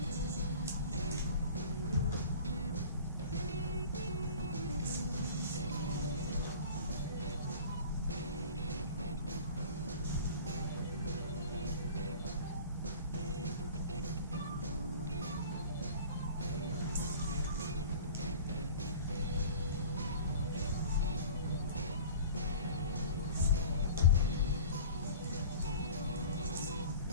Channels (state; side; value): inverted; both; correlation -0.42